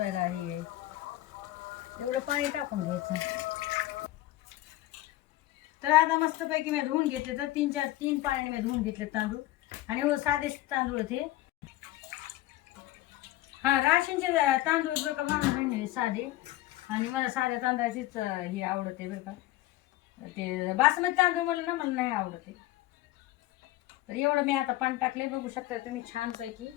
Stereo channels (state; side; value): quieter; right; 16.1 dB